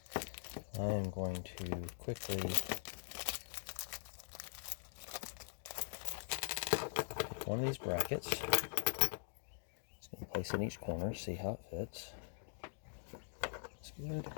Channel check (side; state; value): right; silent; digital silence